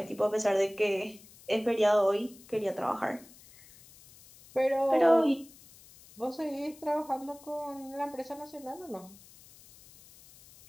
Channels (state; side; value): noise; left; hiss, 23 dB below the sound